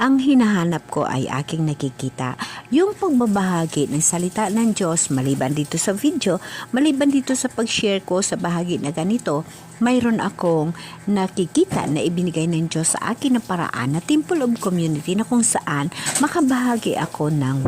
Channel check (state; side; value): identical; both; correlation 1.00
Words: ang hinahanap ko ay aking nakikita. Yung pagbabahagi ng salita ng Diyos, maliban dito sa video, maliban dito sa pag-share ko sa bahagi na ganito, mayroon akong nakikita na ibinigay ng Diyos sa akin na paraan na Temple of Community na kung saan makabahagi ako ng